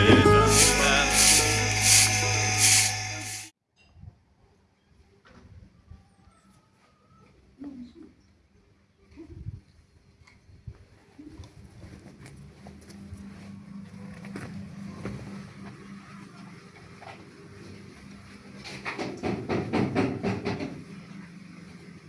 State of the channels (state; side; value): identical; both; correlation 1.00